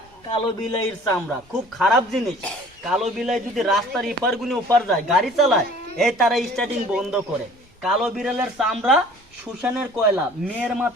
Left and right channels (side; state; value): both; normal; correlation 0.50